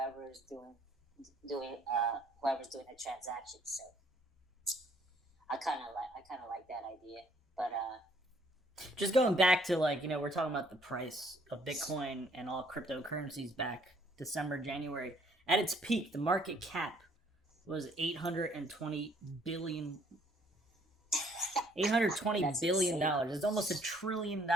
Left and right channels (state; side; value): normal; both; correlation 0.63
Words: doing the transaction. So I kind of like that idea, but just going back to we're talking about the price of Bitcoin and all cryptocurrencies back December, January. At its peak, the market cap was $820 billion. $820 billion. It's almost $1 trillion